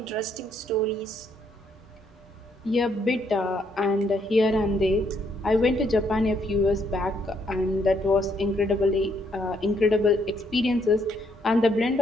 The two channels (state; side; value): normal; both; correlation 0.71